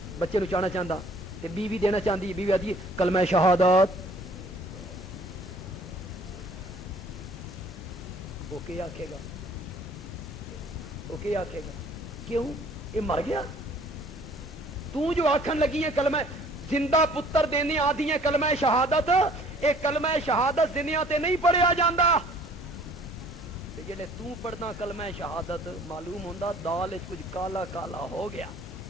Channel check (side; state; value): both; normal; correlation 0.55